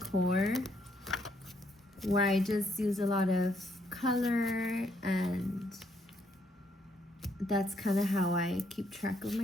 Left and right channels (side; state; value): both; normal; correlation 0.72